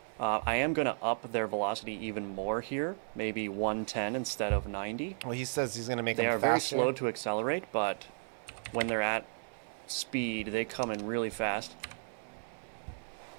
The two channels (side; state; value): left; silent; 55 dB below the other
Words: I am going to up their velocity even more here, maybe 110 instead of 90. Well, he says he's going to make They them are faster. very slow to accelerate, but when they're at speed, they come in really fast.